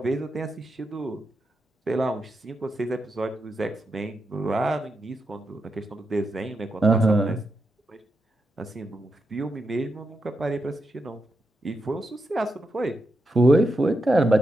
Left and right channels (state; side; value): normal; both; correlation 0.86